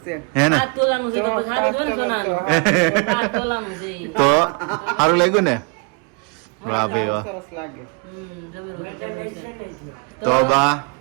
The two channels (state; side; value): quieter; left; 32.6 dB